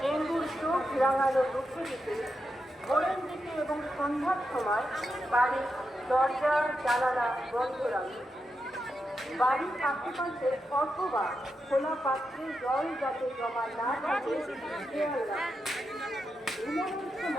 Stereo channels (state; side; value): normal; both; correlation 0.87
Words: ডেঙ্গুর চোখ রাঙানো রুখে দিতে ভোরের দিকে এবং সন্ধ্যার সময় বাড়ির দরজা জানালা বন্ধ রাখুন। বাড়ির আশেপাশে অথবা খোলা পাত্রে জল যাতে জমা না থাকে খেয়াল রাখুন। ঘুমানোর